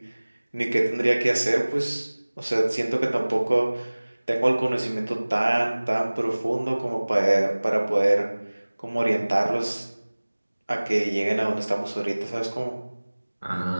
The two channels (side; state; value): both; inverted; correlation -1.00